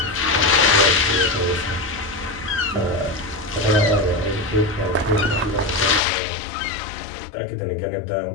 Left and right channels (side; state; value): right; drops out; at 6.0 s